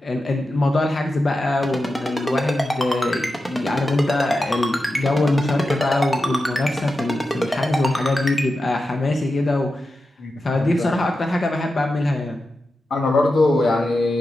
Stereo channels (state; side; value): normal; both; correlation 0.91